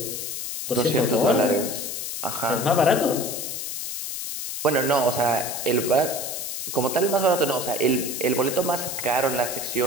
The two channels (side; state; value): left; noise; hiss, 5 dB below the sound